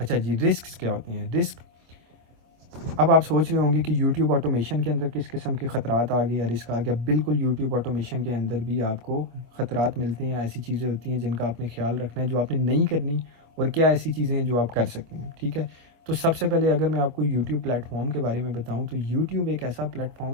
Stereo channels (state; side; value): late; left; 25 ms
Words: जी, रिस्क क्या होती हैं? रिस्क, अब आप सोच रहे होंगे कि YouTube ऑटोमेशन के अंदर किस किस्म के ख़तरात आ गए या रिस्क आ गया। बिल्कुल, YouTube ऑटोमेशन के अंदर भी आपको ख़तरात मिलते हैं। ऐसी चीज़ें होती हैं जिनका आपने ख्याल रखना है, जो आपने नहीं करनी, और क्या ऐसी चीज़ें हैं जो आप कर सकते हैं, ठीक है। तो सबसे पहले अगर मैं आपको YouTube प्लेटफॉर्म के बारे में बताऊँ तो YouTube एक ऐसा